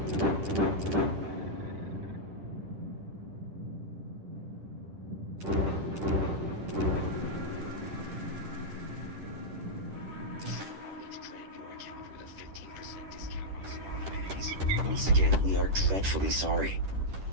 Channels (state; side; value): late; left; 10 ms